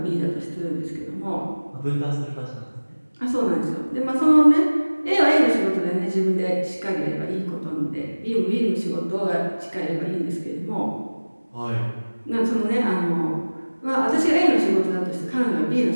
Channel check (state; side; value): inverted; both; correlation -1.00